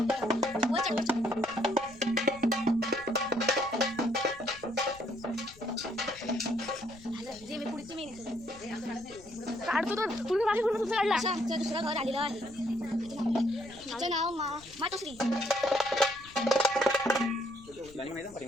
काढतो तर पुढे मागे पूर्ण तुझं काढला. असं आमचं दुसरं घर आलेलं आहे. तिचं नाव मातोश्री.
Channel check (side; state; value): left; noise; rumble, 22 dB below the sound